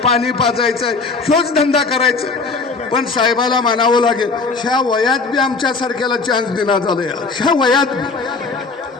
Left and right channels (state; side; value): quieter; right; 4.2 dB